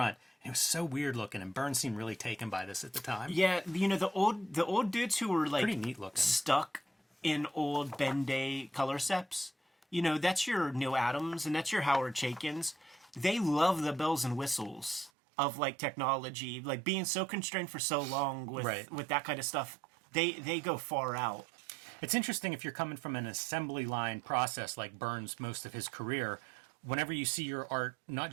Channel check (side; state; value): left; drops out; at 15.1 s